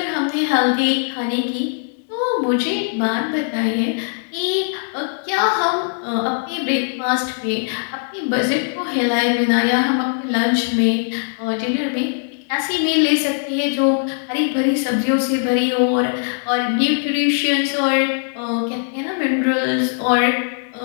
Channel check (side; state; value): right; silent; 64 dB below the other